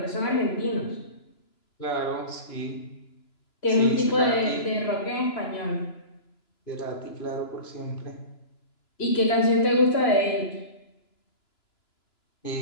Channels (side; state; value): right; late; 2.9 ms